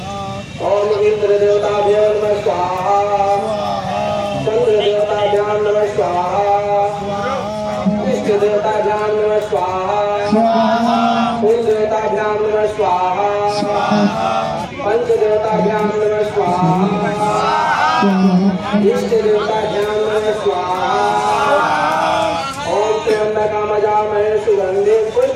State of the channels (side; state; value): both; identical; correlation 1.00